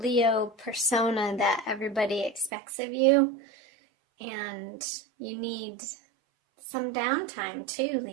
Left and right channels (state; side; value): drops out; left; at 2.5 s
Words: persona that everybody expects of you. And you need some downtime too,